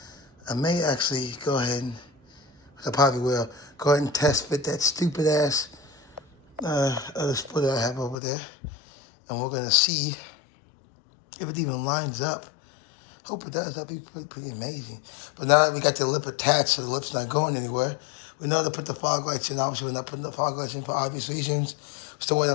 I may actually go ahead and, I probably will, go ahead and test fit that stupid ass other splitter I have over there. And we're gonna see if it even lines up. Hope it does, that'd be pretty amazing. But now that we got the lip attached so the lip's not going anywhere, we know to put the fog lights in. Obviously we're not putting the fog lights in for obvious reasons. Still waiting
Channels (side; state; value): right; drops out; at 8.2 s